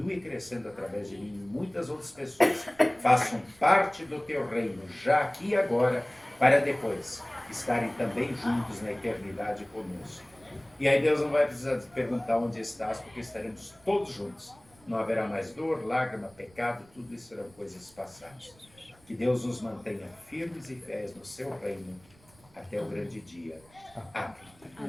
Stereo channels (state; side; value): noise; right; rumble, 28 dB below the sound